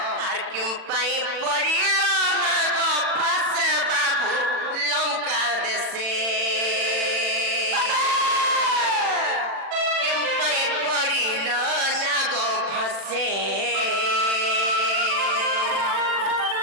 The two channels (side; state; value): left; late; 40 ms